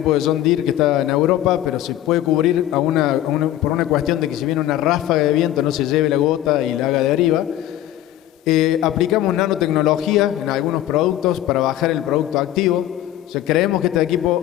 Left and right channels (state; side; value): quieter; right; 13.2 dB